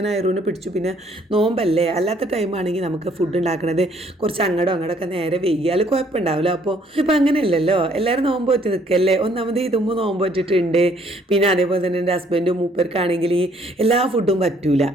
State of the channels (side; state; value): both; normal; correlation 0.64